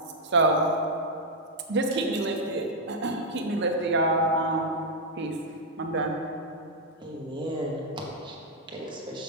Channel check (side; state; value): both; normal; correlation -0.02